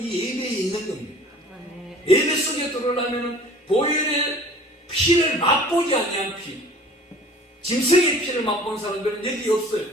예배에 있는 겁니다. 예배 속에 들어오려면 보혈의 피를 맛보지 아니한 피, 짐승의 피를 맛본 사람들은 여기 없어요.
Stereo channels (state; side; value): normal; both; correlation 0.47